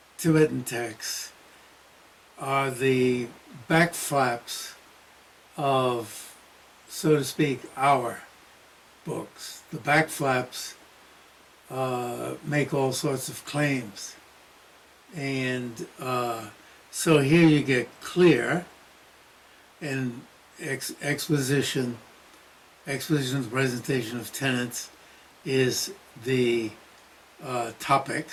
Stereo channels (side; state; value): both; identical; correlation 1.00